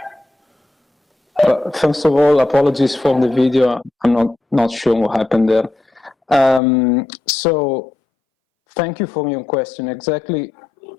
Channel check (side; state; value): right; drops out; at 6.6 s